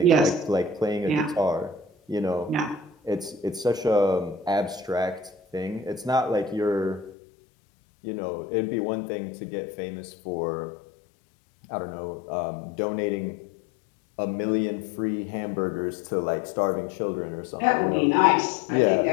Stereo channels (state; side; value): drops out; right; at 7.1 s